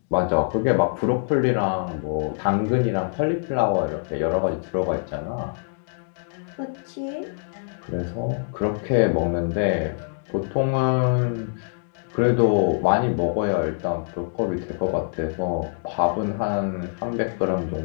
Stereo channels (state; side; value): silent; right; digital silence